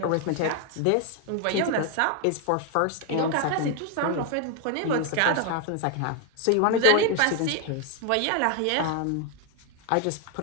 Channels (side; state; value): both; different; correlation 0.01